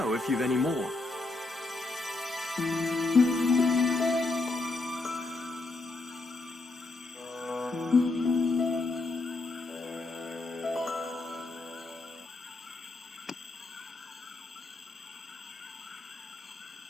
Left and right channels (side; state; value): right; quieter; 3.3 dB